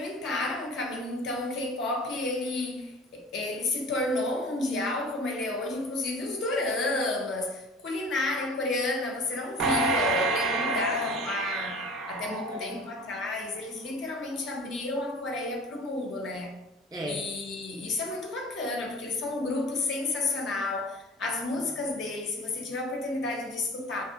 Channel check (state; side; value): normal; both; correlation 0.42